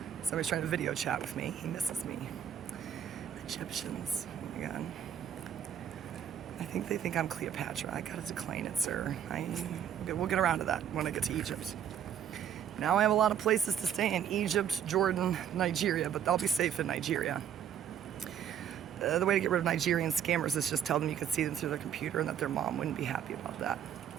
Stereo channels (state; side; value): quieter; left; 9.2 dB